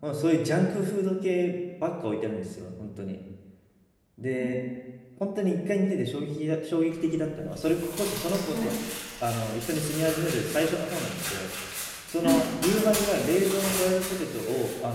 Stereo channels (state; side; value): identical; both; correlation 1.00